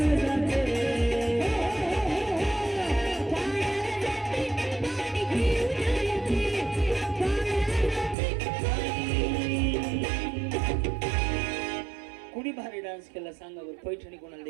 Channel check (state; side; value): drops out; left; at 8.2 s